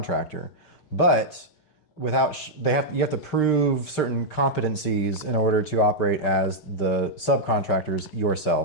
but you have to prove certain competencies in order to operate as the subcontractors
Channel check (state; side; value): late; right; 6.6 ms